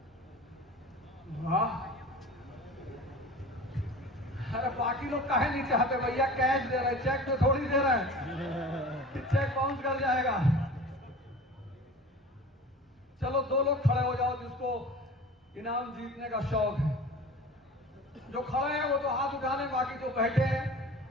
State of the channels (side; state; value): both; normal; correlation 0.39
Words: वाह। अरे बाकी लोग काहे नहीं चाहते भैया, कैश दे रहे, चेक तो थोड़ी दे रहे हैं, चेक बाउंस कर जाएगा। चलो 2 लोग खड़े हो जाओ जिसको इनाम जीतने का शौक है। जो खड़े हैं वो तो हाथ उठाने, बाकी जो बैठे हैं